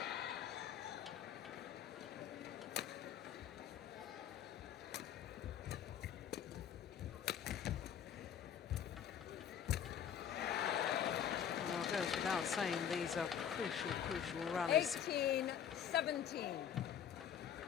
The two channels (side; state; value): right; quieter; 8.9 dB